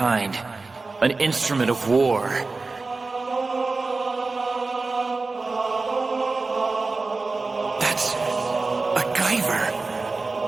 An instrument of war. That's a Guyver.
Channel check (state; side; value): quieter; left; 3.7 dB